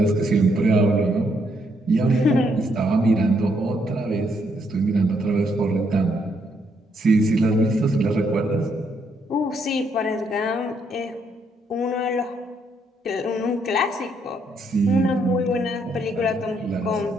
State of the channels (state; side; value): normal; both; correlation 0.74